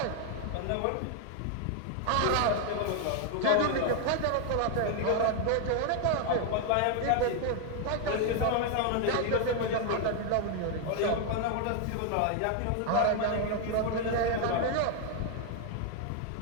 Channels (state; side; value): different; both; correlation 0.00